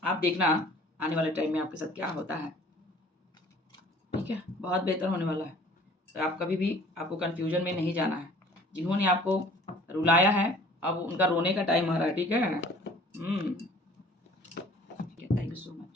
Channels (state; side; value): normal; both; correlation 0.51